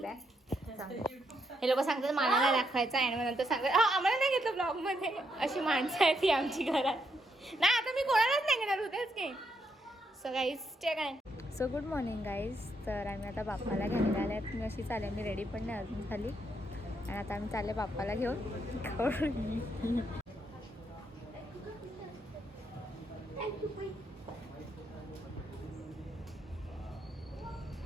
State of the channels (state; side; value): normal; both; correlation 0.78